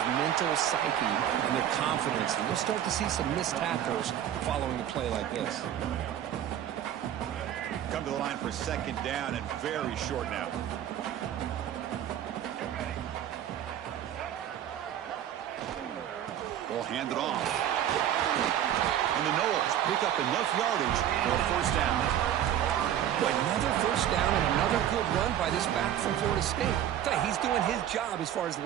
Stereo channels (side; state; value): left; quieter; 10.8 dB